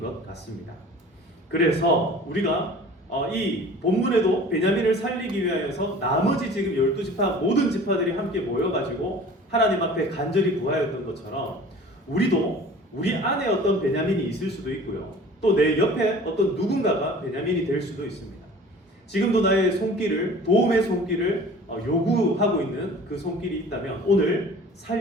같습니다. 그래서 우리가 이 본문에도 베냐민을 살리기 위하여서 나머지 지금 12지파 모든 지파들이 함께 모여가지고 하나님 앞에 간절히 구하였던 것처럼 우리도 우리 안에 어떤 베냐민이 있을 수도 있고요. 또 내 옆에 어떤 누군가가 베냐민이 될 수도 있습니다. 지금도 나의 손길을 도움의 손길을 요구하고 있는 그 손길이 있다면 오늘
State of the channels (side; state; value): both; normal; correlation 0.44